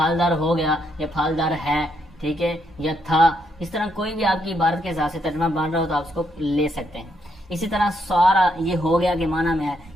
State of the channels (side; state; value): both; normal; correlation 0.76